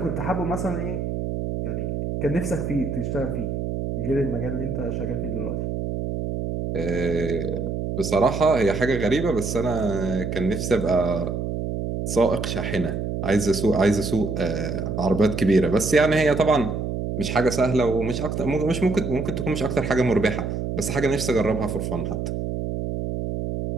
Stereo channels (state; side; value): noise; right; hum, 3 dB below the sound